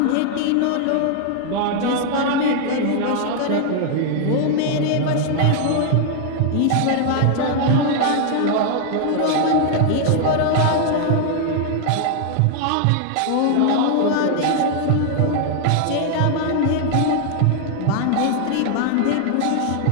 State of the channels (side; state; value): both; different; correlation 0.00